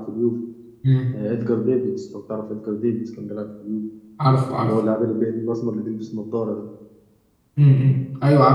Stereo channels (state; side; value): identical; both; correlation 1.00